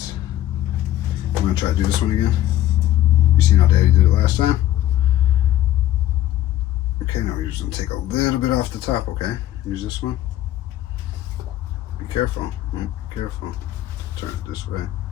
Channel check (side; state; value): right; quieter; 13.6 dB